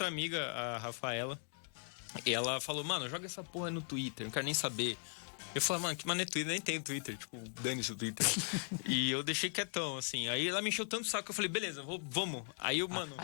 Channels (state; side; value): silent; right; 52 dB below the other